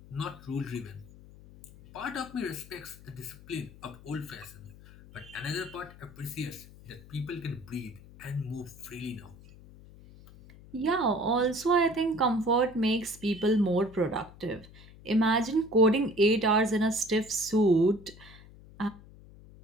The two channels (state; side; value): noise; left; hum, 20 dB below the sound